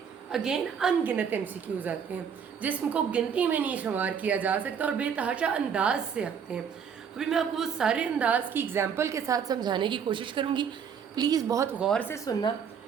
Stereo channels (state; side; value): quieter; left; 7.2 dB